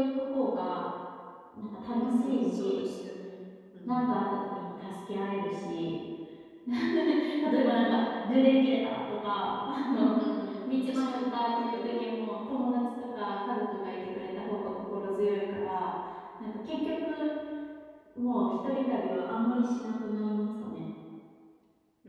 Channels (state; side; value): identical; both; correlation 1.00